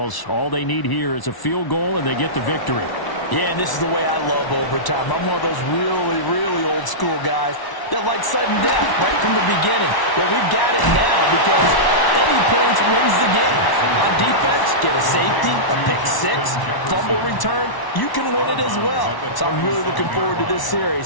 all they need here is a field goal, and they get the victory. Yeah, and this is the way I love overtime. I'm one of those really, really old school guys that like sudden death right from the beginning. Well, we've got it now because any points wins the game. On defense, get a safety, a pick six, fumble return, you can win it as well. So I'm really looking forward to this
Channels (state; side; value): late; right; 1.0 ms